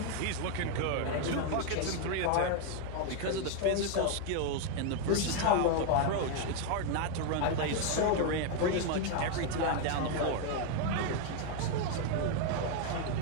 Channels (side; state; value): both; different; correlation 0.01